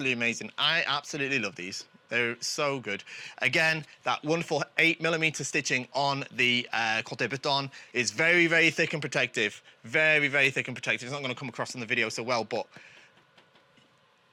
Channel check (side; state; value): both; identical; correlation 1.00